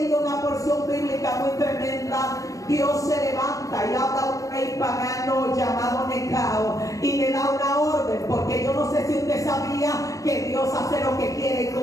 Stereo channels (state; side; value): late; right; 0.16 ms